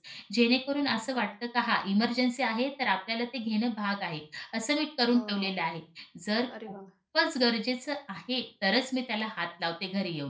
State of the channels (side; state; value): both; identical; correlation 1.00